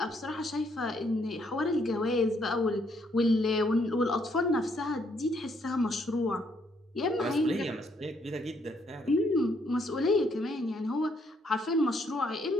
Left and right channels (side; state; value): both; normal; correlation 0.71